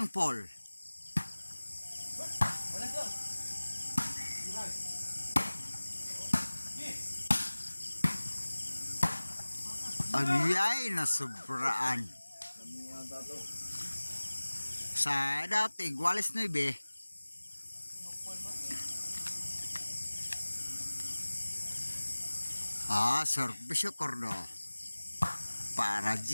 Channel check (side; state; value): both; inverted; correlation -1.00